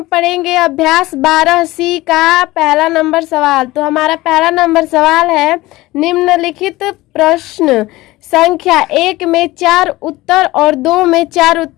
पढ़ेंगे अभ्यास 12C का पहला नंबर सवाल। तो हमारा पहला नंबर सवाल है, निम्नलिखित प्रश्न संख्या 1 में 4 उत्तर और 2 में 4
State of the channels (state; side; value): quieter; right; 18.9 dB